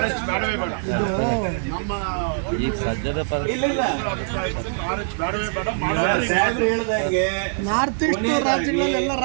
ಬೇಡವೇ ಬೇಡ. ನಮ್ಮ ಈಗ ಸದ್ಯದ ಇಲ್ಲ ಇಲ್ಲ RH ಬೇಡವೇ ಬೇಡ. ಸಾಹೇಬ್ರು ಹೇಳ್ದಂಗೆ ನಾರ್ತ್ ಈಸ್ಟ್ ರಾಜ್ಯಗಳಲ್ಲೆಲ್ಲ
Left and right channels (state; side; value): silent; left; digital silence